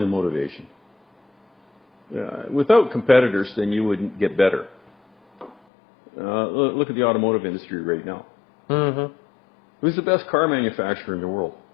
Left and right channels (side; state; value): right; drops out; at 5.6 s